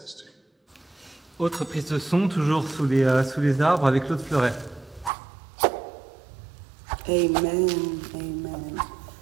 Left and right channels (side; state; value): left; drops out; at 5.1 s